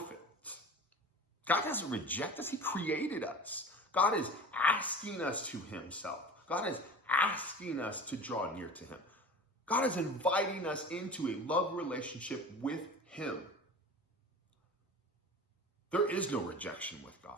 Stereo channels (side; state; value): both; normal; correlation 0.36